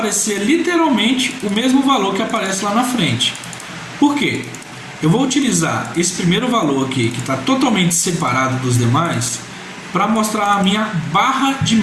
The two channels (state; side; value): identical; both; correlation 1.00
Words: literalmente o mesmo valor que aparece lá na frente. Por quê? Eu vou utilizar esse primeiro valor aqui, que está totalmente separado dos demais, para mostrar a minha barra de